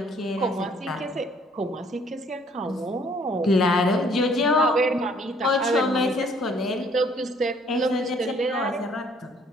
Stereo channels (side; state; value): both; normal; correlation 0.61